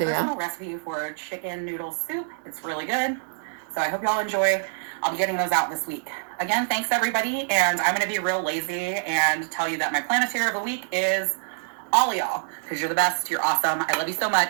personal recipe for chicken noodle soup. It's really good. So I hope y'all enjoy. I'll be getting those out this week. Again, thanks everybody. And I'm going to be real lazy and tell you that my Planeteer of the week is all of y'all, because you're the best. You're awesome. I love you so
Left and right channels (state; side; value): silent; left; 61 dB below the other